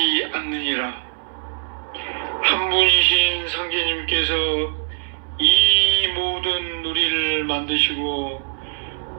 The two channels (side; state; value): left; silent; 64 dB below the other